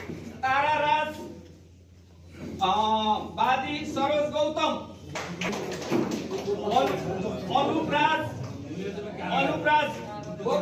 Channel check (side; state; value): both; identical; correlation 1.00